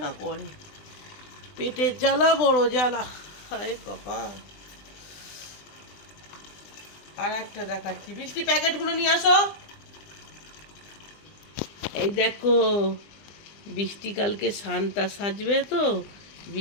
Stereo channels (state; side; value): late; right; 20 ms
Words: না করে। পেটের জ্বালা বড় জ্বালা, হায় কপাল। আর একটা দেখাচ্ছি, বৃষ্টি প্যাকেটগুলো নিয়ে আসো। এই দেখো, বৃষ্টি কালকে সান্তা সাজবে তো,